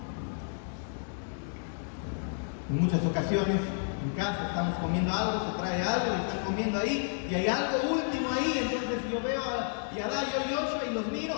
En muchas ocasiones, en casa estamos comiendo algo, se trae algo, y están comiendo ahí, y hay algo último ahí, entonces yo veo a Yadá, yo y Joshua, y los miro,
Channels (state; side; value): silent; right; digital silence